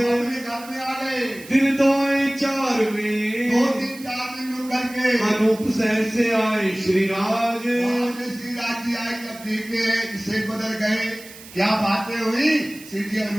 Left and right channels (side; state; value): right; noise; hiss, 18 dB below the sound